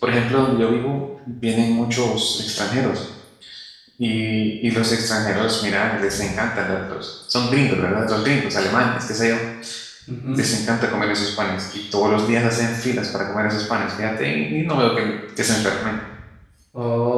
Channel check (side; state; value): both; identical; correlation 1.00